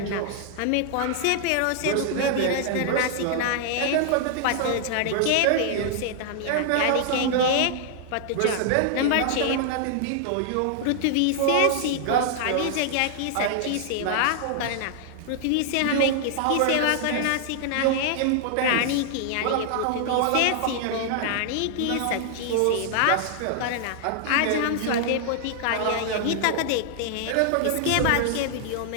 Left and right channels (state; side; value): different; both; correlation -0.01